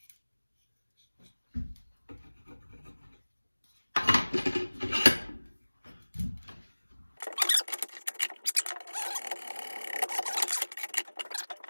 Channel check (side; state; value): both; inverted; correlation -1.00